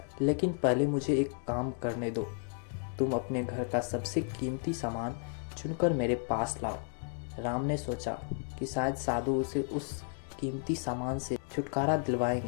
लेकिन पहले मुझे एक काम करने दो। तुम अपने घर का सबसे कीमती सामान चुनकर मेरे पास लाओ। राम ने सोचा कि शायद साधु उसे उस कीमती सामान से छुटकारा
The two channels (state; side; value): silent; right; 55 dB below the other